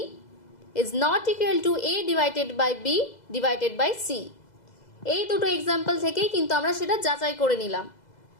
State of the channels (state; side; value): late; right; 2.0 ms